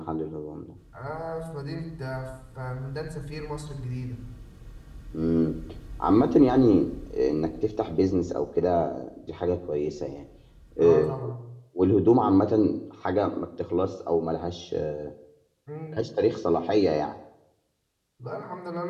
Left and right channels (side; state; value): both; identical; correlation 1.00